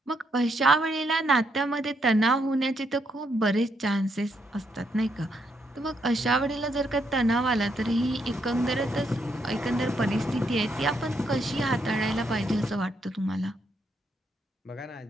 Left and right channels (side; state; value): both; normal; correlation 0.77